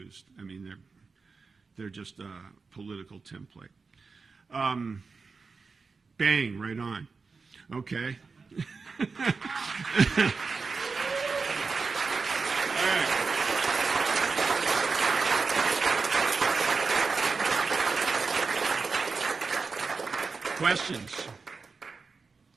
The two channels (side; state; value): left; quieter; 4.6 dB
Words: I mean, they're just a political template. Bang, right on. Okay. All right. Questions?